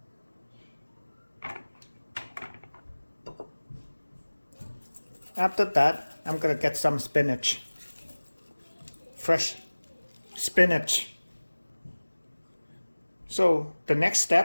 After that, I'm gonna get some spinach, fresh spinach. So the next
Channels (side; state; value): both; inverted; correlation -1.00